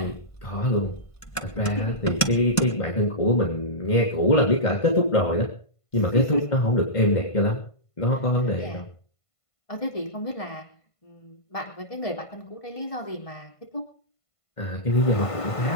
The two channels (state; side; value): late; right; 1.5 ms